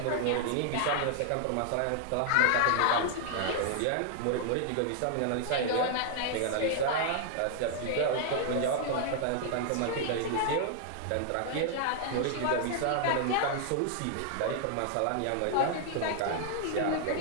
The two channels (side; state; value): both; different; correlation 0.00